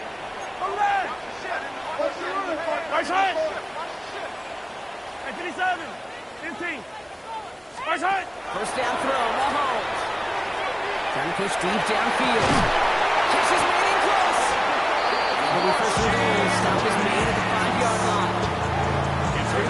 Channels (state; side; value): identical; both; correlation 1.00